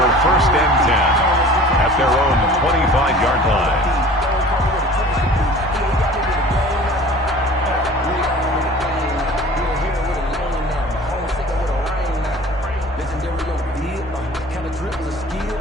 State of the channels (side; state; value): both; normal; correlation 0.44